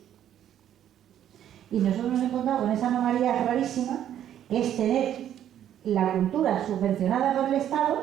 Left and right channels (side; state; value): left; quieter; 10.7 dB